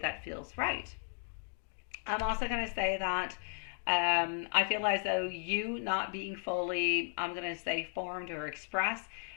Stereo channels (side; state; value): right; silent; 54 dB below the other